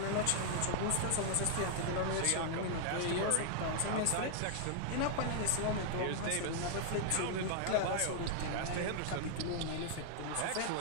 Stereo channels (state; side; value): different; both; correlation -0.01